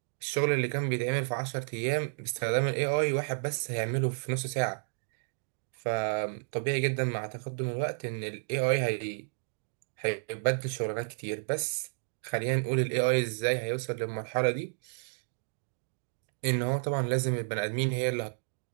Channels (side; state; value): left; silent; digital silence